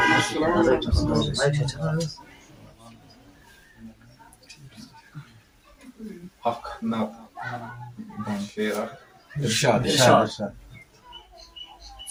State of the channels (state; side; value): identical; both; correlation 1.00